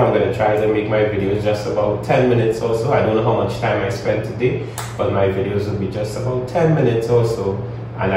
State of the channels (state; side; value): identical; both; correlation 1.00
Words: I'm going to try to make my videos just about 10 minutes or so. I don't know how much time I spent today, but my videos will be just about 10 minutes or so. And